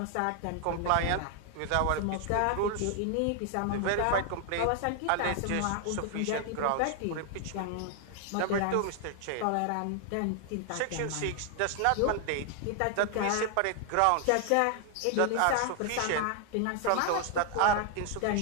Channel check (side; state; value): both; different; correlation 0.00